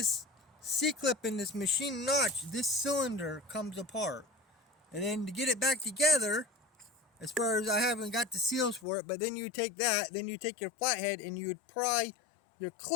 C-clip in this machine notch, this cylinder comes apart. And then to get it back together, as far as I haven't got the seals for it, but then you take that, then you take your flathead and you would pry your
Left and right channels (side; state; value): right; drops out; at 8.8 s